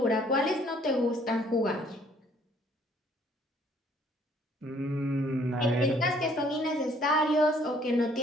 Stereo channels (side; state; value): both; normal; correlation 0.61